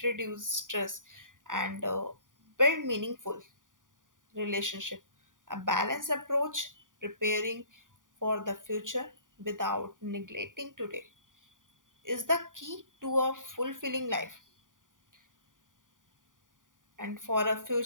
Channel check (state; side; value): late; left; 0.88 ms